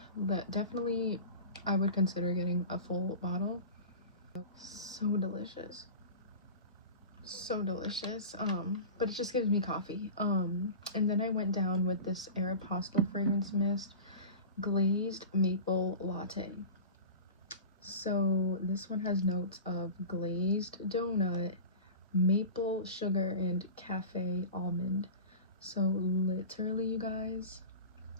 but definitely I would consider getting a full bottle. So delicious, so delicious. But it just gives me coffee. And then I went down with this Aeropostale fragrance mist glazed maple latte. So this one has notes of glazed donut, maple sugar, and cafe almond. So literally, you guys,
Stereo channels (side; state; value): both; inverted; correlation -0.33